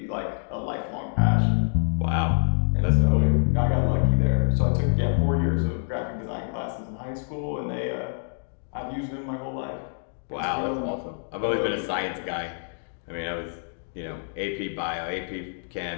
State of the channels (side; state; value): right; silent; digital silence